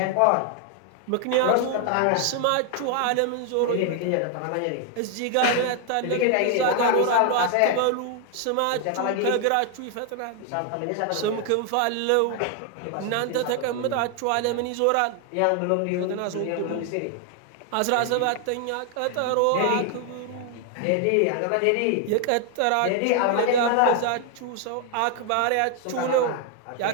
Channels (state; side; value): different; both; correlation 0.00